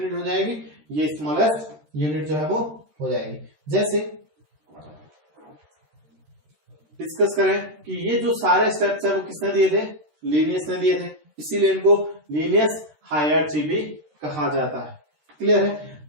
हो जाएगी, ये स्मॉलेस्ट यूनिट जो है वो हो जाएगी। जैसे डिस्कस करें कि ये जो सारे स्टेप्स है वो किसने दिए थे, लीनियस ने दिए थे, इसीलिए इनको लीनियस हायरार्ची भी कहा जाता है। क्लियर है?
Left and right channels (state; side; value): late; left; 13 ms